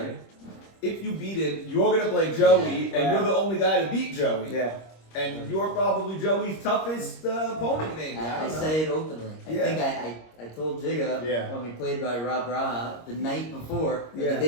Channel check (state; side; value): late; right; 26 ms